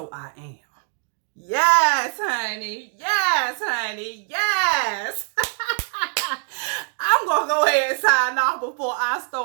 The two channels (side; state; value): left; silent; 63 dB below the other